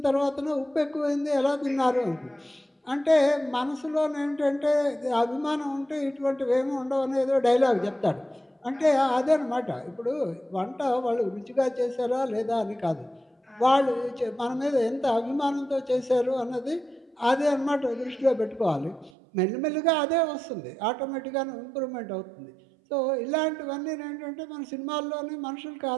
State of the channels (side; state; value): left; drops out; at 19.1 s